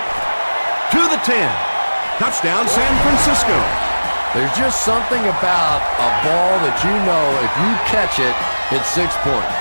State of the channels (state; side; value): inverted; both; correlation -1.00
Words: To the 10. Touchdown, San Francisco. There's just something about a ball that you know if you catch it, it's 6 points.